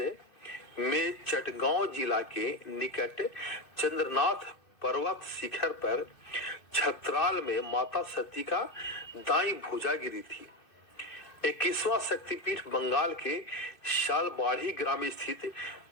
में चटगांव जिला के निकट चंद्रनाथ पर्वत शिखर पर छतराल में माता सती का दाई भुजा गिरी थी। 21वां शक्तिपीठ बंगाल के शालबाड़ी ग्राम स्थित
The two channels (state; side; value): late; right; 2.6 ms